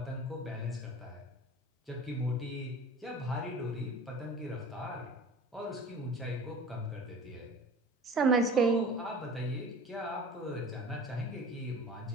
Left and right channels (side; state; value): both; normal; correlation 0.41